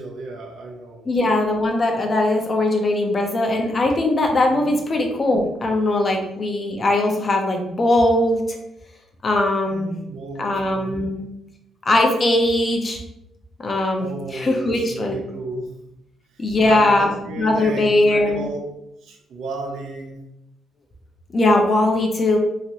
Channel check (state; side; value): normal; both; correlation 0.81